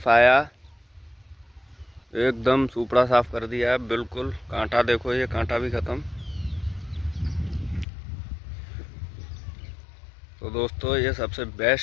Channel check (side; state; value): right; drops out; at 7.9 s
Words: एकदम सुपड़ा साफ कर दिया है बिल्कुल। कांटा देखो, ये कांटा भी ख़त्म। तो दोस्तों ये सबसे